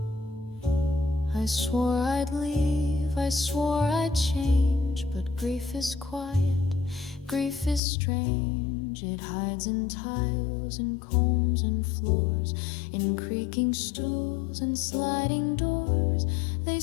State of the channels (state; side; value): drops out; right; at 7.8 s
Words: I swore I'd leave, I swore I'd change, but grief is quiet, grief is strange. It hides in tiles and combs and floors, in creaking stools and sliding doors. They